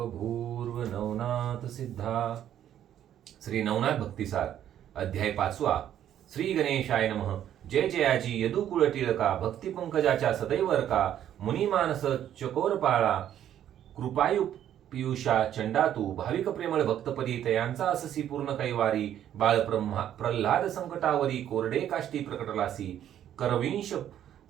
भूर्व नवनाथ सिद्धा. श्री नवनाथ भक्तिसार अध्याय 5. श्री गणेशाय नमः. जय जयाजी यदुकुळ टिळका भक्ती पंकजाच्या सदैव का मुनिमानस चकोरपाळा कृपायु पियुषा चंडातू भाविक प्रेमळ भक्तपदी तयांचा अससी पूर्ण कैवारी बाळ प्रल्हाद संकटावरी कोरडे काष्टी प्रकटलासी करविंश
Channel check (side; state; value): left; quieter; 10.8 dB